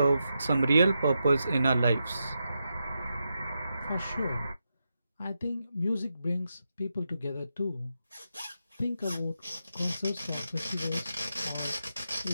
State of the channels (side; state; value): both; inverted; correlation -0.86